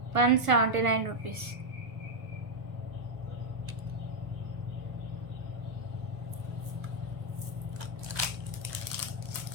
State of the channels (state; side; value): late; left; 1.5 ms